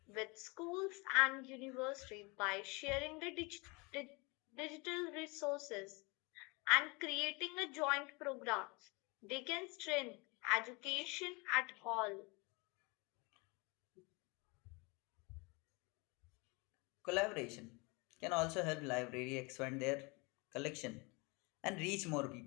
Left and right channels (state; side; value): quieter; right; 28.3 dB